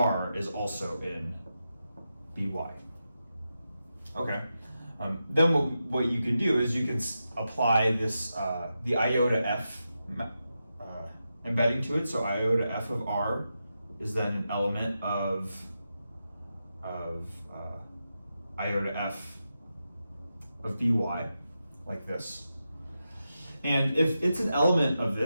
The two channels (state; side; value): inverted; both; correlation -0.89